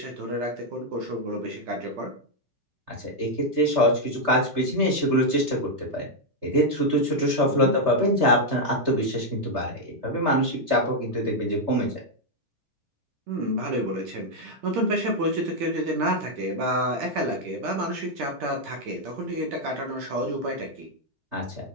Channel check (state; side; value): late; left; 3.3 ms